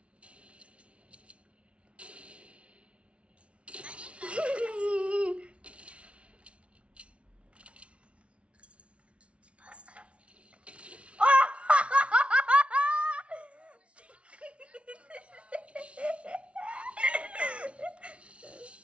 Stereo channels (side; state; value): left; late; 0.061 ms